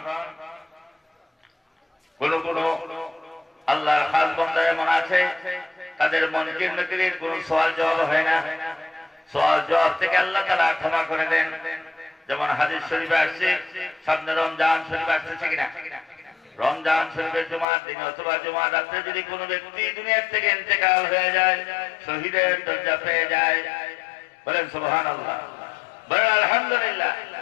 কোন কোন আল্লাহর খাস বান্দা এমন আছে তাদের মনকির নকিরের কোন সওয়াল জবাব হয় না, সওয়াল জবাব থেকে আল্লাহ তাআলা ক্ষমা করে দেন। যেমন হাদিস শরীফে আসছে, সামনে রমজান শরীফ আসছে কিনা, রমজান শরীফের জুমার দিন অথবা জুমার রাত্রে যদি কোনো ব্যক্তি দুনিয়ার থেকে ইন্তেকাল হয়ে যায়, শহীদের দরজা পেয়ে যায়, বলেন সুবহানাল্লাহ, বলেন আলহামদুলিল্লাহ,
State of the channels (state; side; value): drops out; right; at 17.7 s